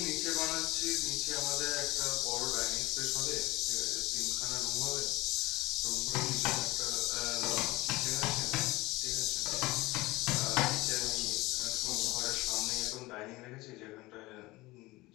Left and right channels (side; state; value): right; quieter; 20.6 dB